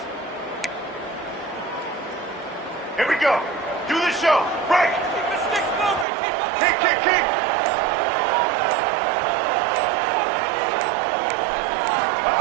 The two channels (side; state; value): left; drops out; at 6.1 s